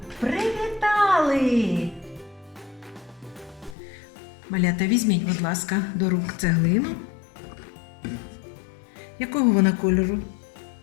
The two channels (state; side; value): drops out; right; at 3.8 s